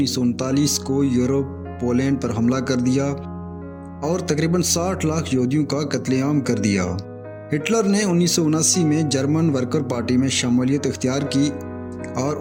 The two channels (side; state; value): both; identical; correlation 1.00